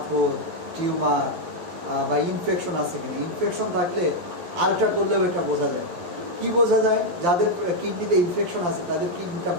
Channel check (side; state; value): left; late; 12 ms